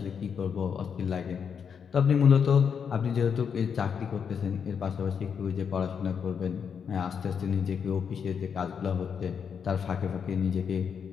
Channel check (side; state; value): right; quieter; 7.0 dB